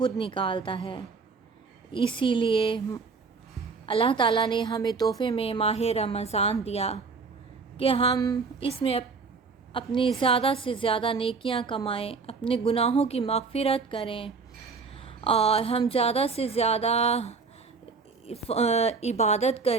نکالتا ہے۔ اسی لیے اللہ تعالیٰ نے ہمیں تحفے میں ماہ رمضان دیا کہ ہم اس میں اپنی زیادہ سے زیادہ نیکیاں کمائیں، اپنے گناہوں کی مغفرت کریں اور ہم زیادہ سے زیادہ عبادت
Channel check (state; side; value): quieter; left; 4.8 dB